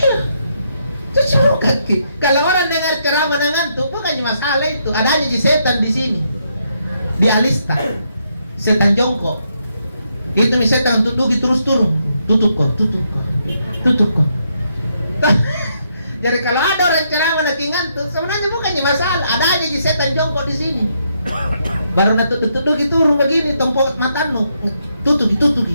Cuci muka Ki. Kalau orang dengar ceramah ngantuk bukannya masalah itu. Adanya Ji setan di sini. Di Alista. Setan jongkok. Itu nih setan duduk terus turun. Tutup kok. Jadi kalau ada orang ceramah nanti ngantuk, sebenarnya bukannya masalah. Adanya Ji setan jongkok di sini. Baru tutup turun begini, tompok matanu. Tutup.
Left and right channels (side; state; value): both; inverted; correlation -0.77